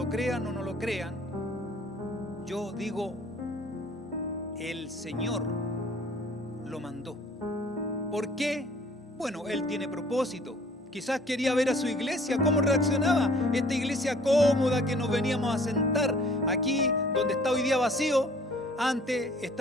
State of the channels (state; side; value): normal; both; correlation 0.54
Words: crean o no lo crean, yo digo, el Señor lo mandó. ¿Por qué? Bueno, Él tiene propósito. Quizás quería ver a su iglesia, cómo reaccionaba. Esta iglesia cómoda que nos veníamos a sentar aquí, donde está hoy día vacío, antes